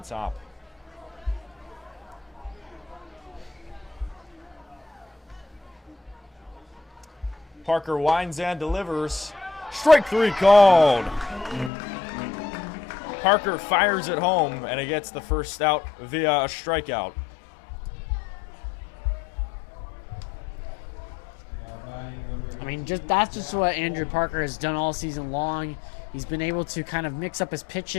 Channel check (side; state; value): right; drops out; at 11.7 s